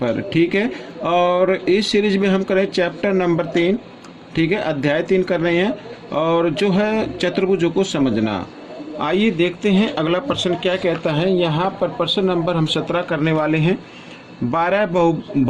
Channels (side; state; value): both; identical; correlation 1.00